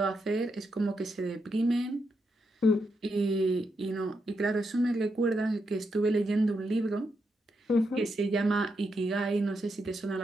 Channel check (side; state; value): both; normal; correlation 0.83